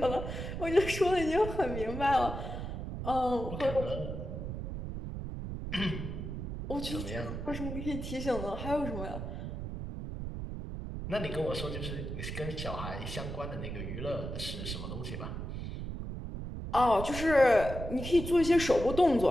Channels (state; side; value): noise; right; rumble, 6 dB below the sound